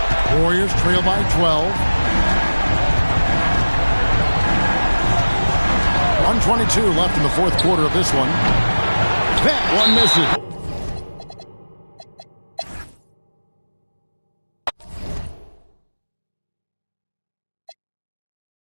Warriors trail by 12. 1:22 left in the fourth quarter of this one. That one misses.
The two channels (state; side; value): inverted; both; correlation -1.00